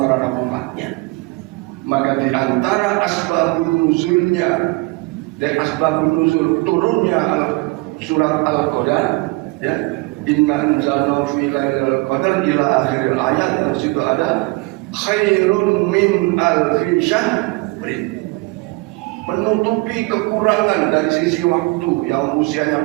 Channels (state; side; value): quieter; left; 24.8 dB